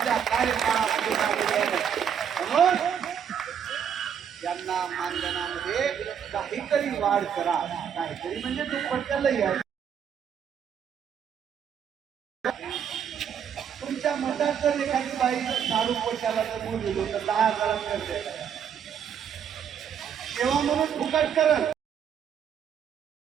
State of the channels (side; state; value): left; quieter; 8.1 dB